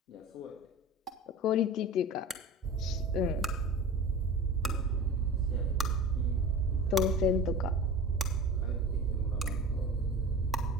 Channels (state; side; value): normal; both; correlation 0.35